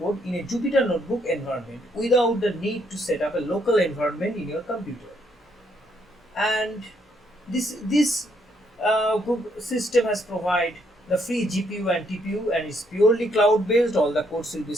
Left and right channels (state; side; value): normal; both; correlation 0.72